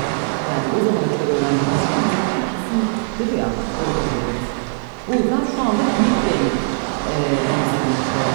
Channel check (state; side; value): silent; left; 66 dB below the other